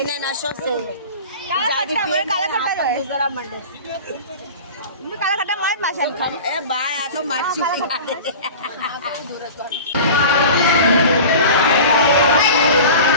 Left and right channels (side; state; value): both; inverted; correlation -0.36